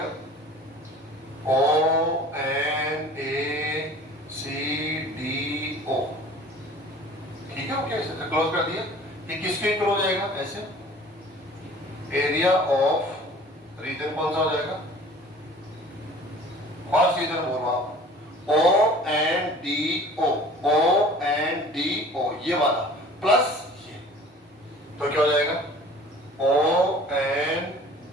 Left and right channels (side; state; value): both; normal; correlation 0.46